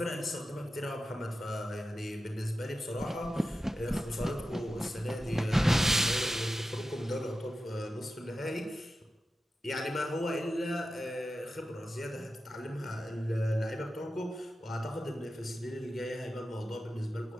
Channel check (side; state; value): both; normal; correlation 0.92